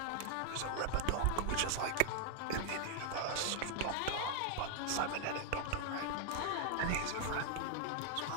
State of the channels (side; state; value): both; different; correlation 0.00